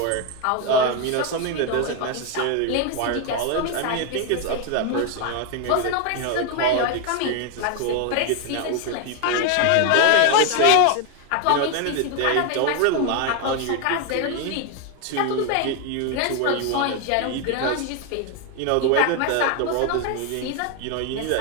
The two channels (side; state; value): both; different; correlation 0.01